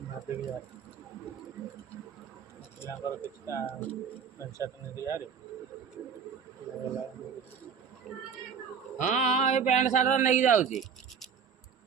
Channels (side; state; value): left; quieter; 6.7 dB